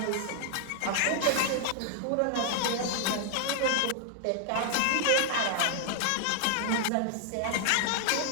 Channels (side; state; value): both; different; correlation 0.00